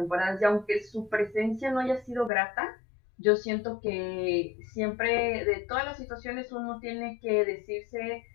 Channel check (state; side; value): drops out; right; at 2.3 s